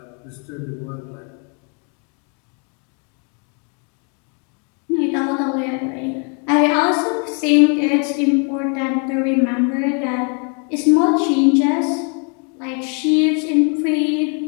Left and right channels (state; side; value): quieter; right; 38.8 dB